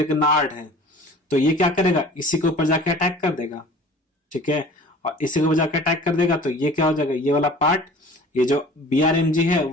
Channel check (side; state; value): both; normal; correlation 0.45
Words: है, तो ये क्या करेगा, इसी के ऊपर जाके अटैक कर देगा। ठीक है, और इसी के ऊपर जाके अटैक कर देगा तो ये क्या हो जाएगा, ये वाला पार्ट, ये जो BRMG है